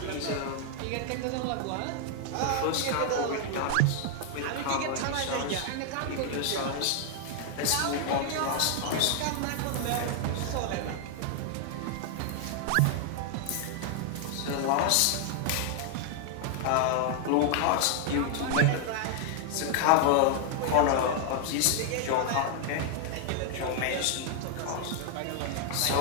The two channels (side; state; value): both; different; correlation 0.00